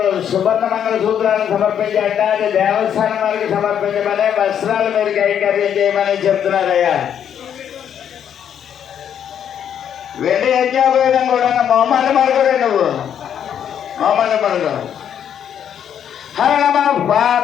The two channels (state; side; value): quieter; right; 9.0 dB